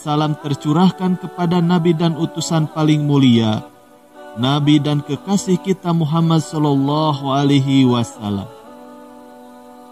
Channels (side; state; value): both; identical; correlation 1.00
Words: tercurahkan kepada Nabi dan utusan paling mulia, Nabi dan kekasih kita Muhammad sallallahu alaihi wasallam.